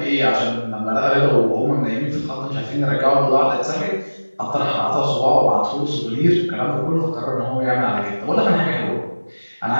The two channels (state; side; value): inverted; both; correlation -1.00